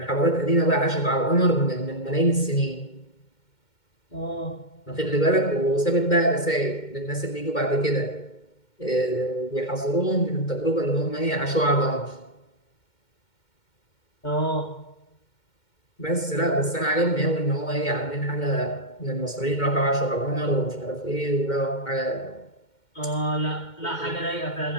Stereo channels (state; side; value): late; right; 2.1 ms